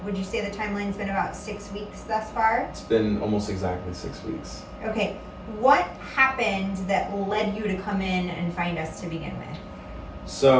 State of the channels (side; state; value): both; identical; correlation 1.00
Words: Would you say the timeline's been about 6 weeks thus far? It's been almost exactly 6 weeks. Okay. What happened that led you to come in and find us to begin with?